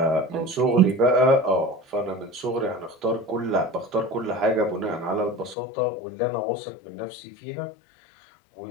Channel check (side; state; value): right; drops out; at 5.6 s